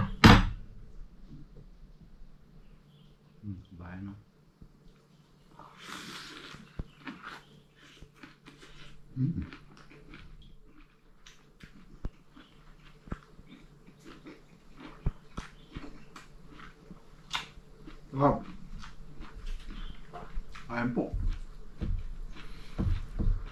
Kabayan no. Wow. Ayan po.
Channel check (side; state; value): both; identical; correlation 1.00